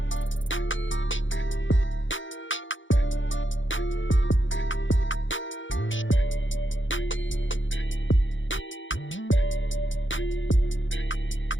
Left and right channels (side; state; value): right; late; 0.56 ms